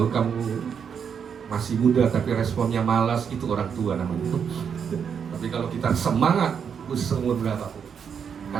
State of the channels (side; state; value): left; quieter; 7.2 dB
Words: kamu masih muda tapi responnya malas, itu orang tua namanya. Tapi kalau kita semangat, umur berapapun,